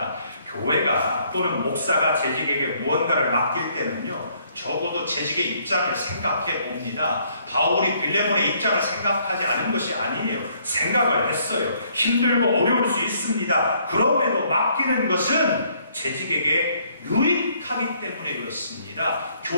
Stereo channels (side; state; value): both; inverted; correlation -0.66